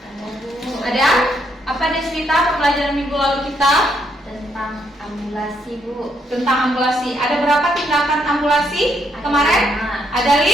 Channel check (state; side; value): normal; both; correlation 0.74